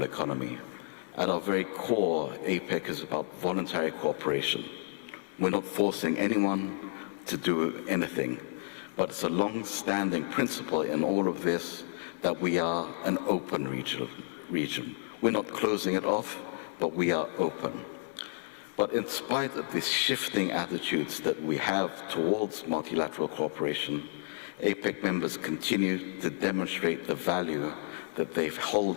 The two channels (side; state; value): right; silent; digital silence